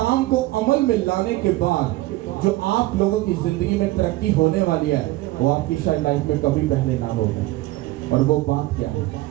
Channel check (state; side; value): quieter; left; 18.2 dB